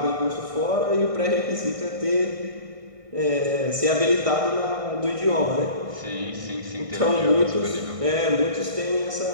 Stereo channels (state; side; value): late; left; 1.6 ms